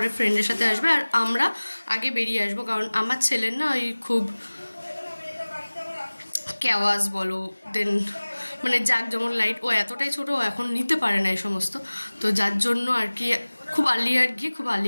ফ্রেন্ডের সাথে আসবে, আর আমরা আগে বেরিয়ে আসবো, কারণ আমার ছেলের না ওই খুব ক্যাওয়াজ বলো, দেন মানে জাক যেমন লাইট, ও এতটাই ছোটো, ও এখন নিতে পারে না এই সমস্ত। তো যার জন্য আর কি খুব আর্লিয়ার গিয়ে খুব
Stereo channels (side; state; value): both; inverted; correlation -1.00